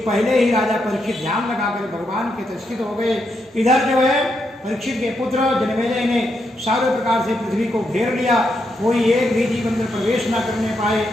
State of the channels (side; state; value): both; normal; correlation 0.81